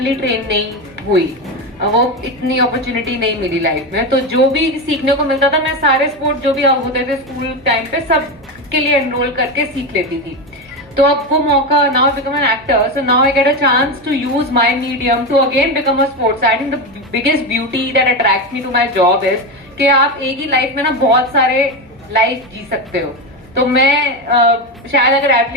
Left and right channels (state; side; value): noise; right; hum, 29 dB below the sound